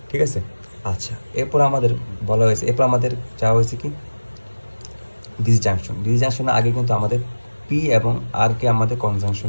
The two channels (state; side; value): inverted; both; correlation -1.00